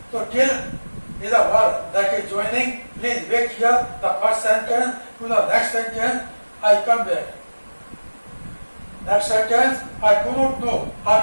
तो till is a word that is joining. Please wait here. The first sentence to the next sentence. I come back. Next sentence. I do not know how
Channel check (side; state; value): both; inverted; correlation -1.00